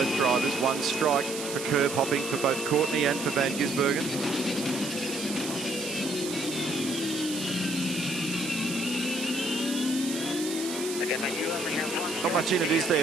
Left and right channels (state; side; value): noise; right; hiss, 8 dB below the sound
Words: drivers. 1 strike for curb hopping for both Courtney and for Van Gisbergen. Not much in it, is